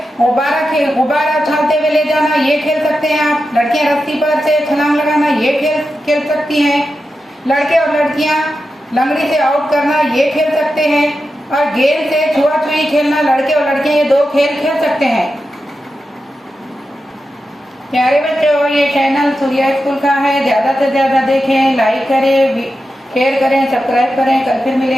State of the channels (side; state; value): both; normal; correlation 0.90